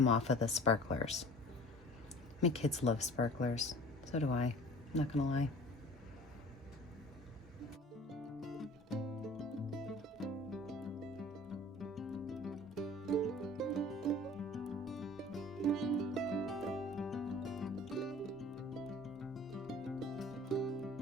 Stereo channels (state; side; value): normal; both; correlation 0.45